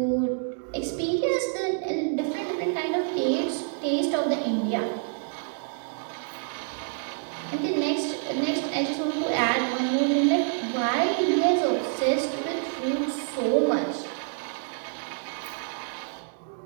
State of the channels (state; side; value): silent; left; 60 dB below the other